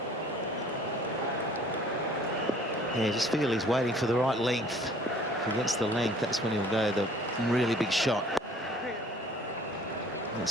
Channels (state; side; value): normal; both; correlation 0.53